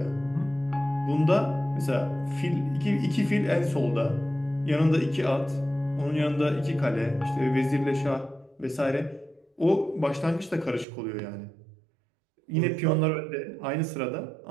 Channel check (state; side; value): drops out; left; at 10.9 s